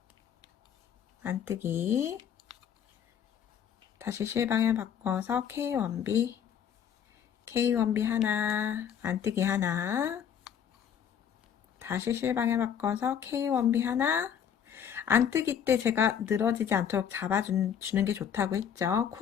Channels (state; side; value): quieter; right; 8.5 dB